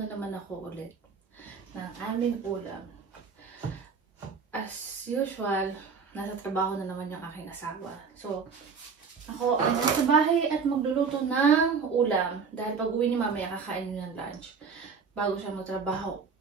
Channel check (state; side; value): quieter; left; 5.6 dB